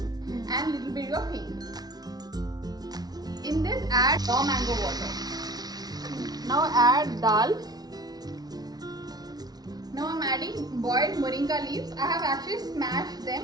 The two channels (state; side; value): late; left; 0.19 ms